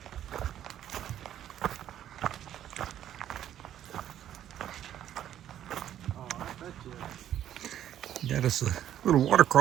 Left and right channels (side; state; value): left; quieter; 11.1 dB